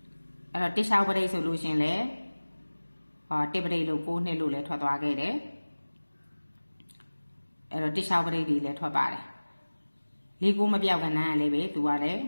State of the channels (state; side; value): inverted; both; correlation -1.00